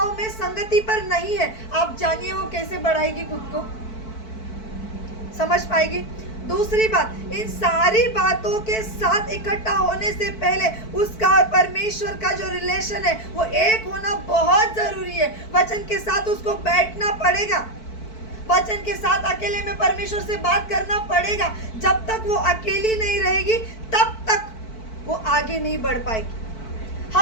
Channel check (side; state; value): right; late; 4.5 ms